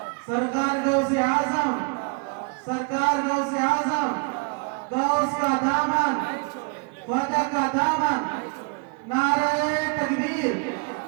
سرکار غوث اعظم، سرکار غوث اعظم، غوث کا دامن، خواجہ کا دامن، نعرہ تکبیر،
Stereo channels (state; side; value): quieter; left; 33.4 dB